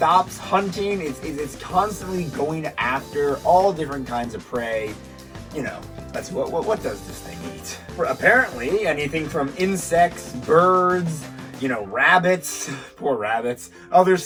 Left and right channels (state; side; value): identical; both; correlation 1.00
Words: hunting. It's constantly going after all different kinds of prey. That's what does this thing eat? Apparently, anything from insects, birds, rabbits, poor rabbits, other